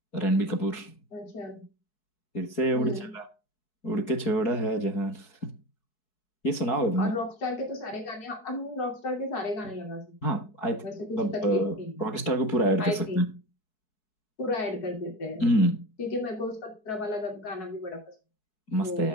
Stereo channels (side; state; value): right; late; 4.7 ms